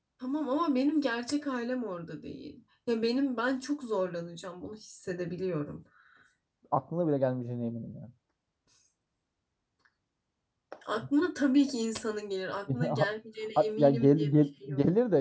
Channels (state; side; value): identical; both; correlation 1.00